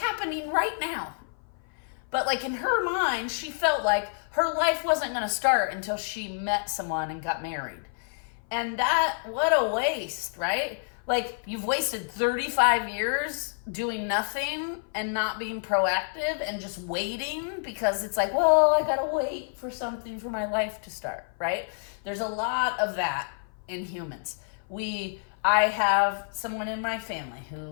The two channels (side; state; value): right; silent; 56 dB below the other